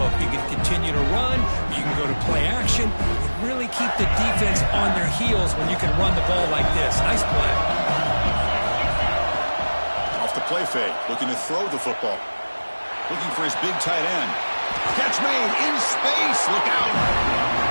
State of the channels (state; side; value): inverted; both; correlation -1.00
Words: You can continue to run. You can go to play action. And really keep the defense on their heels when you can run the ball like this. Nice play. Off the play fake, looking to throw the football. Looking for his big tight end. Catch made in space. Look out.